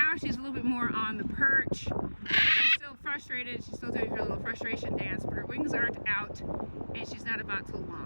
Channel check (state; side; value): inverted; both; correlation -1.00